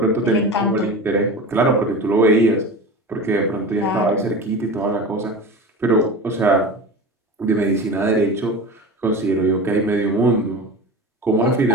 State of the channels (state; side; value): normal; both; correlation 0.31